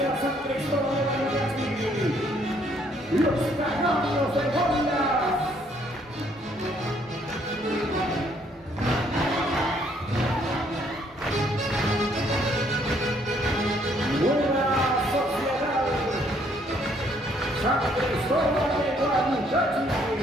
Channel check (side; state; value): both; normal; correlation 0.66